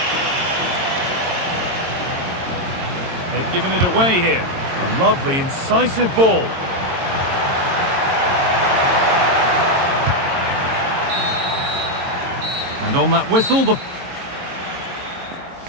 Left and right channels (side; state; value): left; late; 22 ms